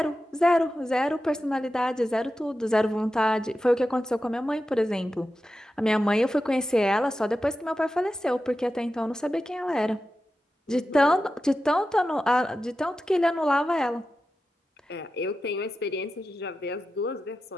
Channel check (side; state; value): both; normal; correlation 0.92